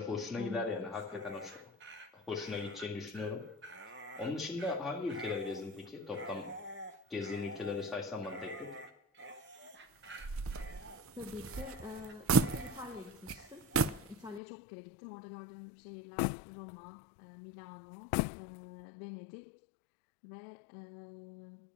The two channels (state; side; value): drops out; right; at 14.4 s